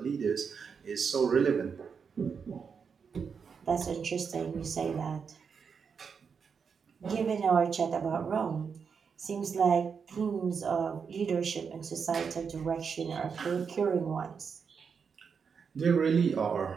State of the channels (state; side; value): quieter; left; 6.1 dB